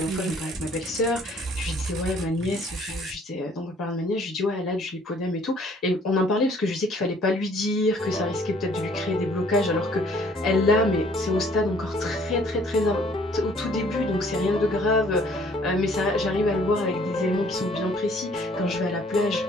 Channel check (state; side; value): normal; both; correlation 0.59